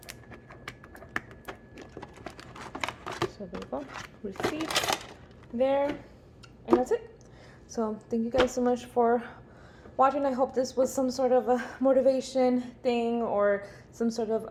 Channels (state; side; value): identical; both; correlation 1.00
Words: So there we go, receipt there, and that's it. So thank you guys so much for watching. I hope this was some sort of a motivation thing or some sort